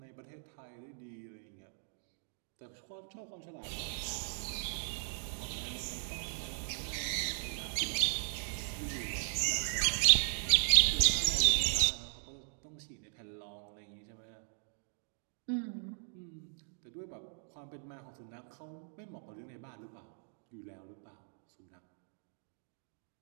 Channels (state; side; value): silent; left; digital silence